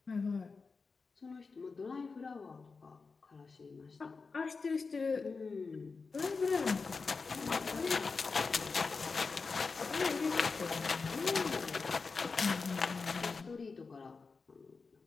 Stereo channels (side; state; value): right; quieter; 4.5 dB